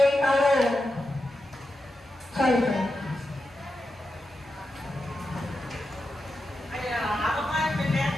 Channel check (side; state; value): both; normal; correlation 0.89